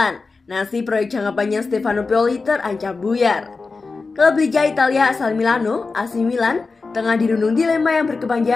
Nasib proyek jangka panjang Stefano Pioli terancam buyar. Klub Liga Italia asal Milano, AC Milan, tengah dirundung dilema yang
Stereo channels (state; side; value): quieter; right; 4.1 dB